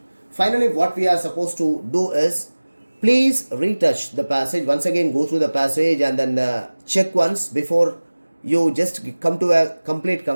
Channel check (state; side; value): inverted; both; correlation -1.00